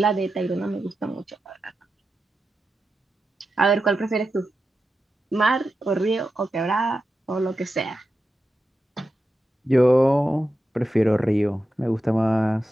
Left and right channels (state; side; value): normal; both; correlation 0.90